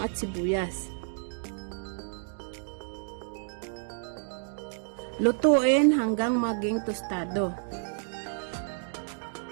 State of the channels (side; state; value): left; silent; digital silence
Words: at sibuyas. Lutuin hanggang maging tostado.